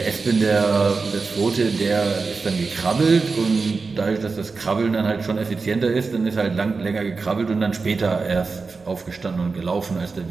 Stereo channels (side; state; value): left; quieter; 4.4 dB